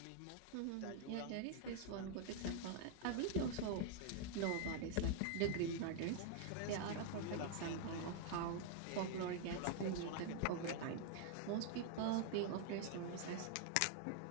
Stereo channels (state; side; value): different; both; correlation 0.00